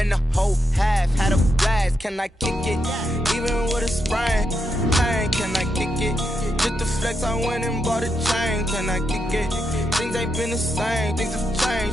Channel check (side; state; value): both; normal; correlation 0.83